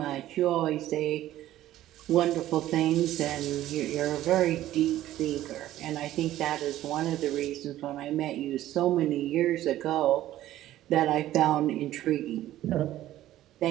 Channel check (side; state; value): left; quieter; 13.9 dB